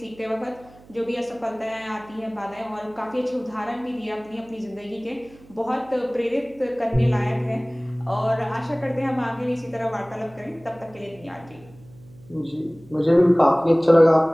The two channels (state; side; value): noise; right; hum, 24 dB below the sound